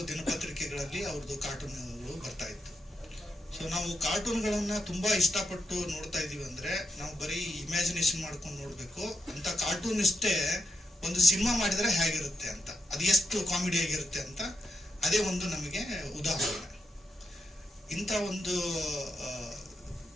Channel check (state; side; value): normal; both; correlation 0.83